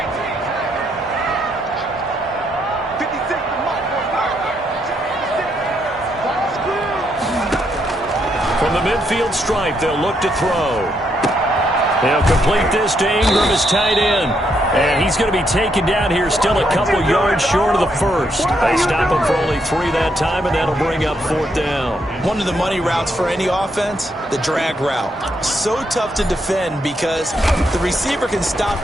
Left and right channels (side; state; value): both; normal; correlation 0.76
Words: From the midfield stripe, they'll look to throw. They'll complete this to Ingram as tight end. And he's going to be taken down here, still a couple yards short of the first. They stop him for only 3 that time, and that'll bring up 4th down. One of the money routes for any offense, the drag route. So tough to defend because the receiver can stop